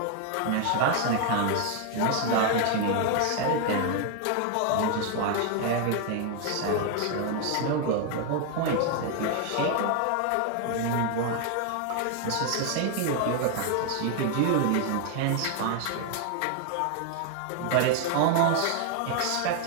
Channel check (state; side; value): different; both; correlation 0.01